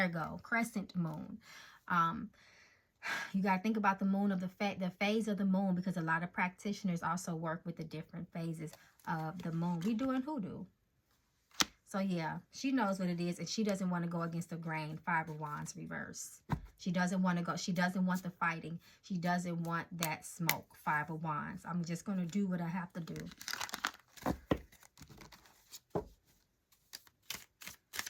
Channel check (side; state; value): both; identical; correlation 1.00